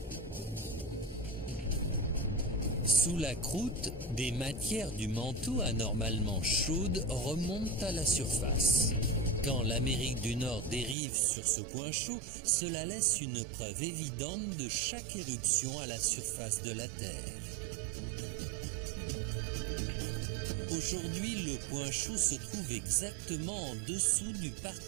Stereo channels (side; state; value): left; drops out; at 11.0 s